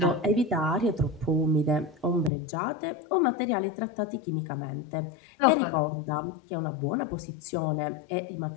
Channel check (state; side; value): drops out; right; at 2.3 s